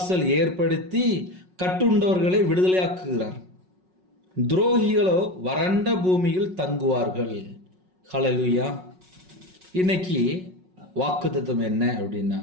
ஏற்படுத்தி கட்டுண்டவர்களை விடுதலையாக்குகிறார். துரோகிகளோ வறண்ட பூமியில் தங்குவார்கள். ஹல்லேலூயா. இன்னைக்கு வாக்குத்தத்தம் என்ன அப்படின்னா,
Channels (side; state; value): left; late; 5.4 ms